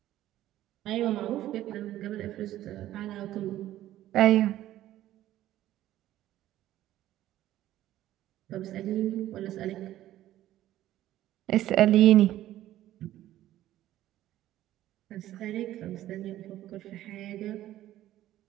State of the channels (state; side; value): quieter; left; 13.7 dB